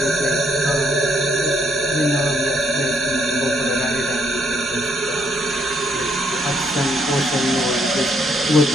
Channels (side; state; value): both; normal; correlation 0.71